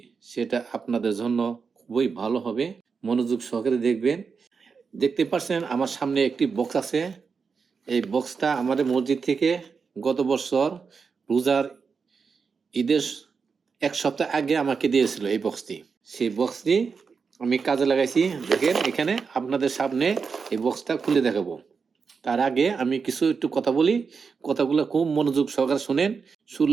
সেটা আপনাদের জন্য খুবই ভালো হবে। মনোযোগ সহকারে দেখবেন। দেখতে পাচ্ছেন আমার সামনে একটি বক্স আছে। এই বক্সটা আমাদের মসজিদ থেকে গত বছর রোজার ঈদের ১ সপ্তাহ আগে আমাকে দিয়েছিল এই বক্সটি। সেই বক্সটি আমি কাজে লাগাইছি। দেখেন এখানে আপনাদের সামনে এই বক্সটা খুলে দেখাবো। তার আগে আমি কিছু একটু কথা বলি। কথাগুলো খুব মনোযোগ সহকারে শোনেন।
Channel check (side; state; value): left; quieter; 5.4 dB